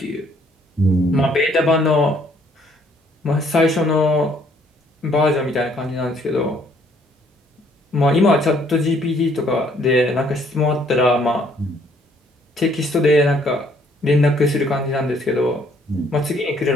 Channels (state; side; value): normal; both; correlation 0.64